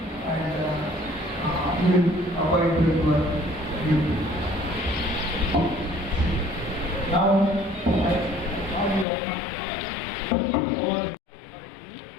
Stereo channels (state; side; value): drops out; right; at 9.1 s